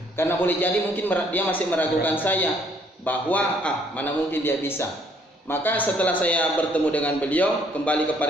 Karena boleh jadi mungkin dia masih meragukan saya bahwa mana mungkin dia bisa. Maka setelah saya bertemu dengan beliau, kembali ke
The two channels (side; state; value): both; normal; correlation 0.65